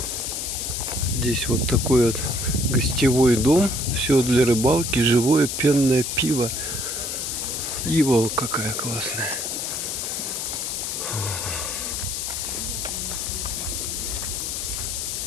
Здесь вот такой вот гостевой дом. Все для рыбалки, живое пенное пиво. Ива какая классная.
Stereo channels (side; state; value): left; noise; hiss, 3 dB below the sound